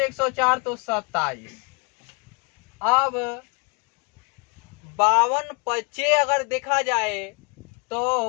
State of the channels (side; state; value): right; quieter; 32.7 dB